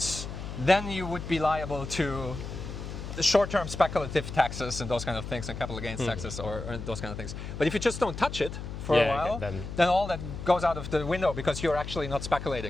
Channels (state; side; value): noise; left; hum, 8 dB below the sound